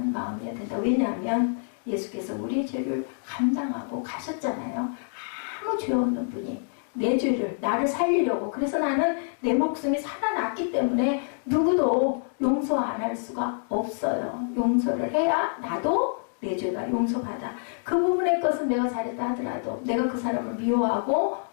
마음이어야 된다. 왜냐하면 예수께서 우리의 죄를 감당하고 가셨잖아요. 아무 죄 없는 분이 내 죄를 나를 살리려고. 그래서 나는 내 목숨이 살아났기 때문에 누구도 용서 용서 안 할 수가 없어요. 용서를 해야 나도 내 죄가 용서받아. 그 부분의 것은 내가 잘했다 하더라도 내가 그 사람을 미워하고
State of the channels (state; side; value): silent; right; digital silence